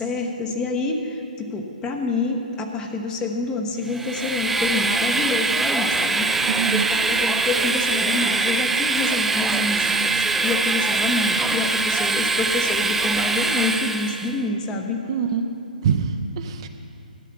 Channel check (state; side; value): normal; both; correlation 0.45